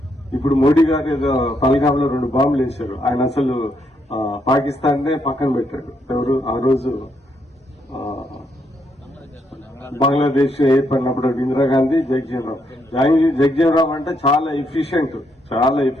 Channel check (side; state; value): both; normal; correlation 0.76